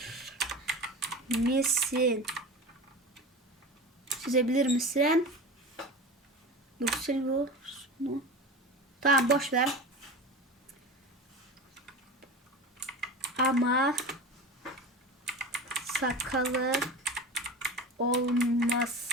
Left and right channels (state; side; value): normal; both; correlation 0.31